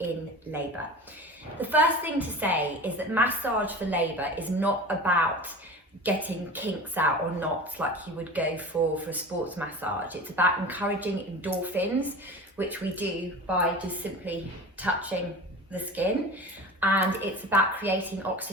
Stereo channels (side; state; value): both; normal; correlation 0.35